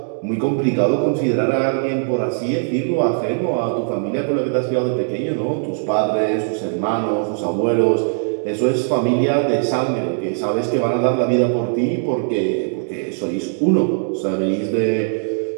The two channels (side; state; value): left; silent; digital silence